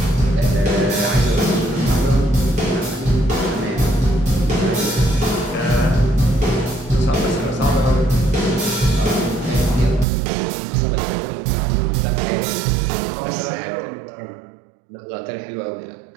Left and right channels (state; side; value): drops out; left; at 10.1 s